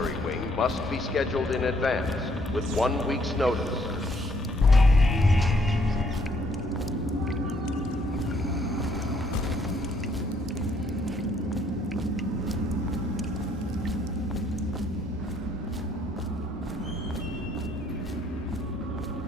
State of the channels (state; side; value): normal; both; correlation 0.67